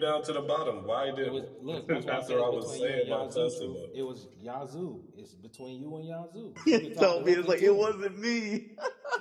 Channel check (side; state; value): both; identical; correlation 1.00